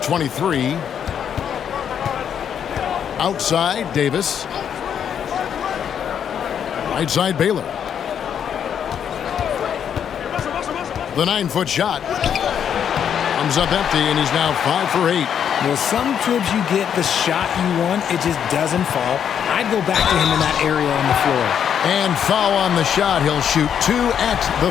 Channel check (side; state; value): right; quieter; 8.5 dB